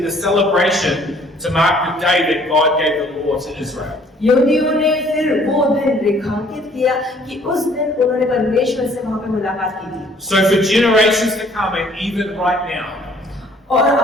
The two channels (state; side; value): normal; both; correlation 0.59